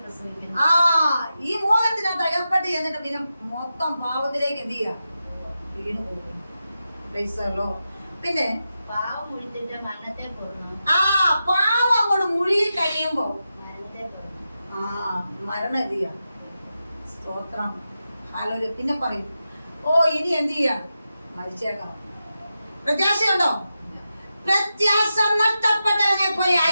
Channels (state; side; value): inverted; both; correlation -0.90